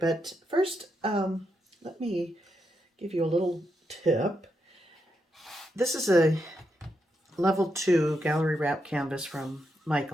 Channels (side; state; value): both; normal; correlation 0.83